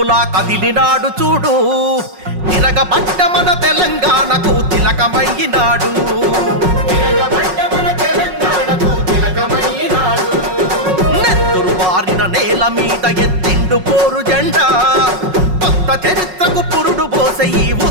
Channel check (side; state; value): left; late; 5.4 ms